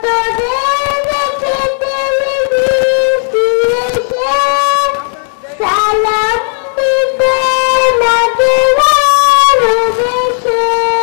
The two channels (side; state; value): right; silent; 64 dB below the other